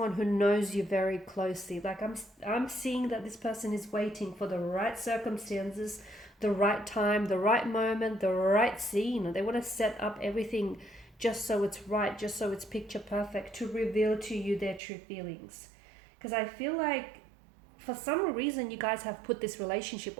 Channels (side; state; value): left; drops out; at 14.8 s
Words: who knows you very closely. Like I'm seeing that this person is waiting for the right circumstances, the right time, the right moment, the right scene. They want to set up everything just so it's right, just so it's picture perfect, to reveal to you their true feelings. Because I feel like for some reason you guys have put this relationship